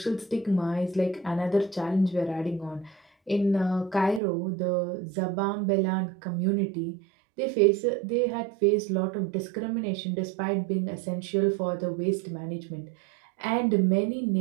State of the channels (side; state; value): left; drops out; at 4.2 s